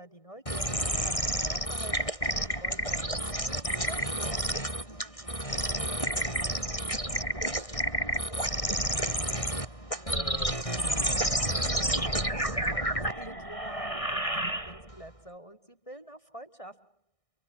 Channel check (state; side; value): late; right; 1.6 ms